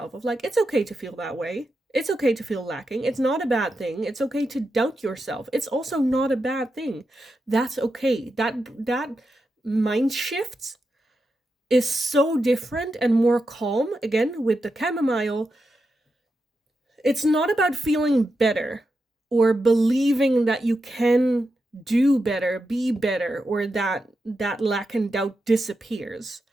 of like, it's okay to feel that way. It's okay to feel lacking. It's not a bad thing. It's okay to doubt yourself. It's also not a bad thing. That's okay. That mind shifts is so different and more calm. Again, with the chamomile, it's not about feeling better or believing that you can do better, be better, or that lack and doubt disappears.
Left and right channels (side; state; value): both; normal; correlation 0.88